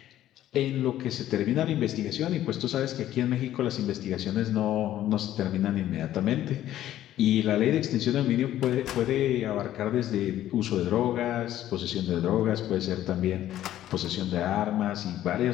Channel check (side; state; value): right; quieter; 12.8 dB